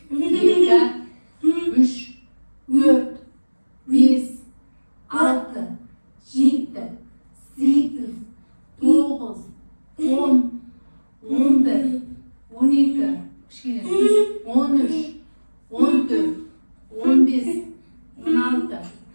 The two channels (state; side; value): inverted; both; correlation -1.00